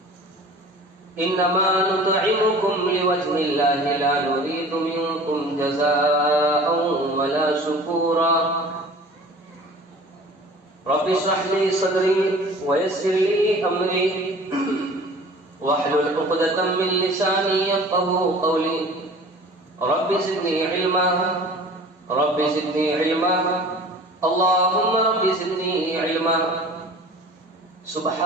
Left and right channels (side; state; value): both; normal; correlation 0.44